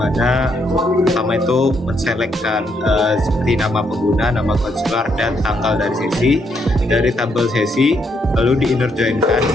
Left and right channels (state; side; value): normal; both; correlation 0.75